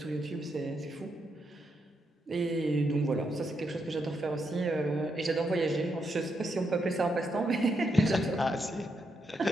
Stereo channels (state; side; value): normal; both; correlation 0.81